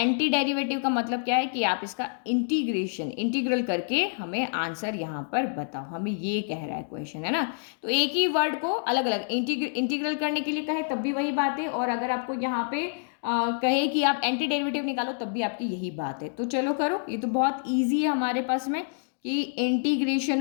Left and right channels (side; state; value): right; silent; digital silence